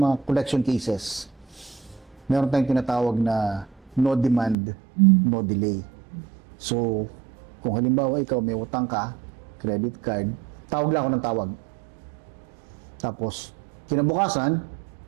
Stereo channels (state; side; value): drops out; left; at 4.5 s